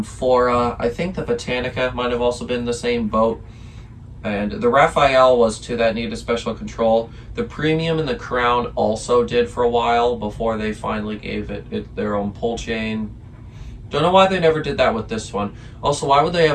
I think the Botanica might have also been in the same boat. And the Raphael was too, that needed special control. The Premium and the Crown also did for a while before they finally gave it their own pull chain. Don't know why they never did that with this one. Also, why would they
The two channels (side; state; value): both; identical; correlation 1.00